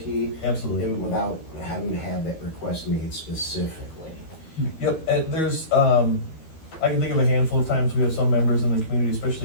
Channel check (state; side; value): late; right; 12 ms